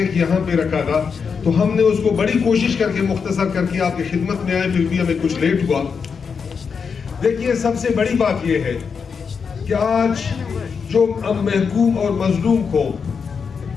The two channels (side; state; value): right; quieter; 5.9 dB